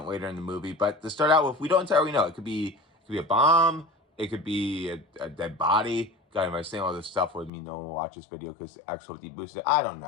later in the movie. But to start out with, we don't entirely know. It could be a bomb. It could be a dead body. God, am I saying all this stuff with me? No one will watch this video because X will deboost it. I don't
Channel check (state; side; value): drops out; right; at 7.5 s